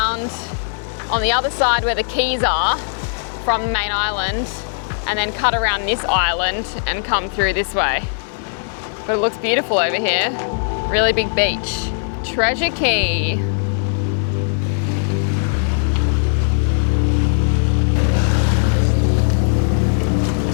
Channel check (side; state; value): right; silent; 67 dB below the other